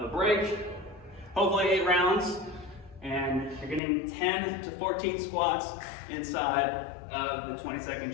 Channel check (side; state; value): right; drops out; at 3.8 s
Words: a break, hopefully 8 rounds, and you're getting 10 to 14 squats inside of the 20